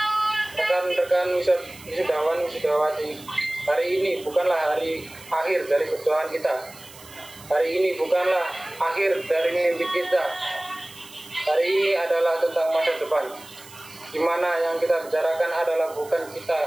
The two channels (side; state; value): right; noise; hiss, 20 dB below the sound